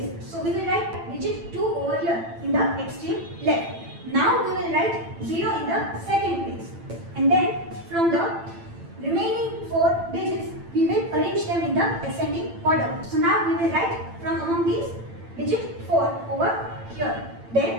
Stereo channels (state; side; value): late; left; 8.9 ms